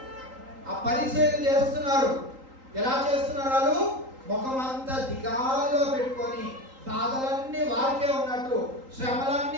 ఆ పరిచయం చేస్తున్నారు. ఎలా చేస్తున్నారు? వాళ్ళు ముఖం అంతా దిగాలుగా పెట్టుకొని బాధలన్నీ వారికే ఉన్నట్టు,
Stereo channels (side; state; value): left; late; 3.8 ms